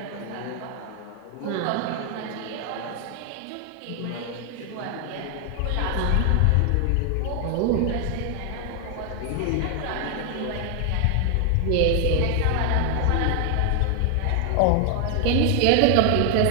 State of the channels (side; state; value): both; different; correlation 0.00